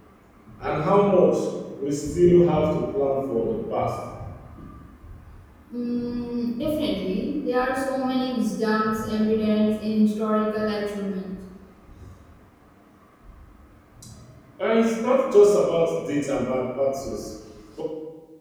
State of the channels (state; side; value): identical; both; correlation 1.00